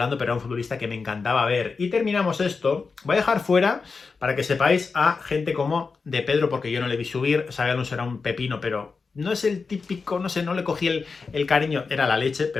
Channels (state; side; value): quieter; right; 4.7 dB